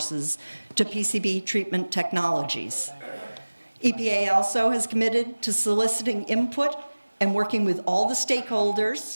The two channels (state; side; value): inverted; both; correlation -1.00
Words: to PCB treatment technologies. EPA also has committed to soliciting input and working with all the